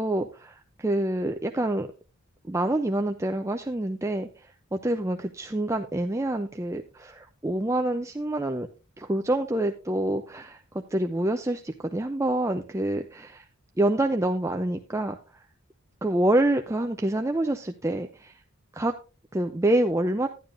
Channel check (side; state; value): both; normal; correlation 0.76